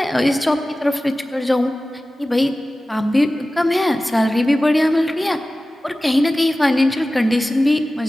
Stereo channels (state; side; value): normal; both; correlation 0.96